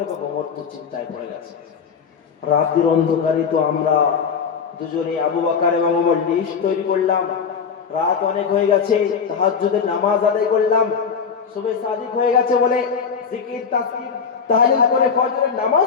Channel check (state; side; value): quieter; right; 6.2 dB